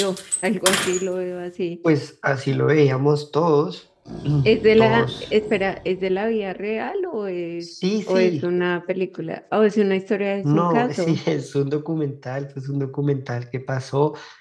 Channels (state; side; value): identical; both; correlation 1.00